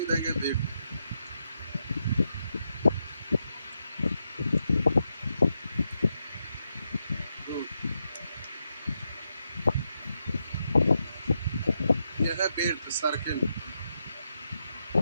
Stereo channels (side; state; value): both; inverted; correlation -0.84